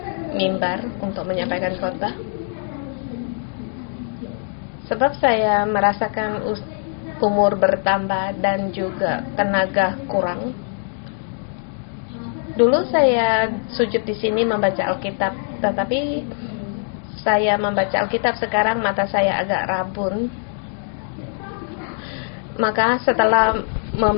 mimbar untuk menyampaikan khotbah. Sebab saya merasakan umur bertambah dan juga tenaga kurang. Dulu saya sujud di sini membaca Alkitab, tetapi saya membaca Alkitab sekarang mata saya agak rabun. Maka setelah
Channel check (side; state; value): right; silent; 58 dB below the other